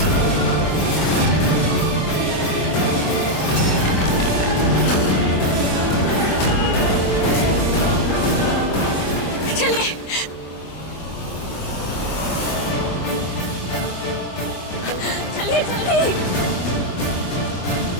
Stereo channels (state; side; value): late; right; 24 ms